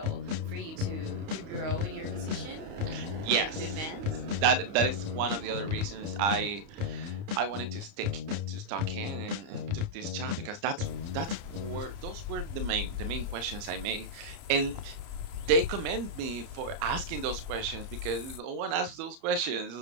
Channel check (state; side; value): late; left; 30 ms